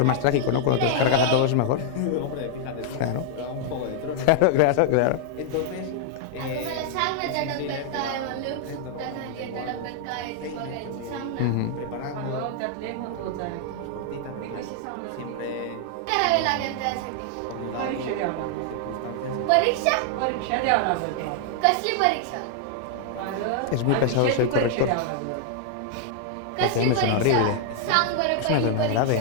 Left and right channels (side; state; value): both; different; correlation 0.00